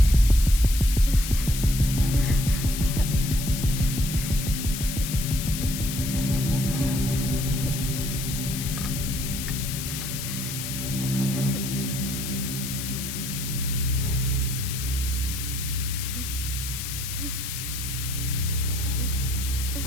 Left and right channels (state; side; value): noise; left; hiss, 6 dB below the sound